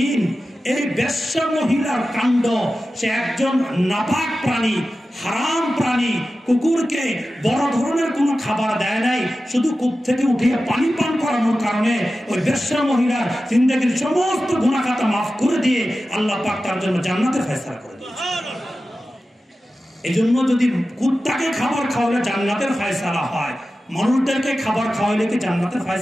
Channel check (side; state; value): both; normal; correlation 0.94